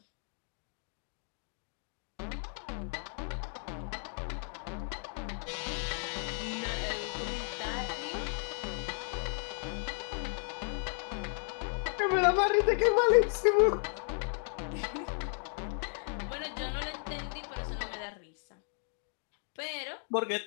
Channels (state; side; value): silent; right; 55 dB below the other